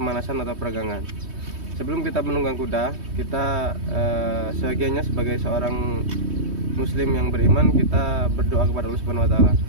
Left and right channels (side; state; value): left; late; 3.2 ms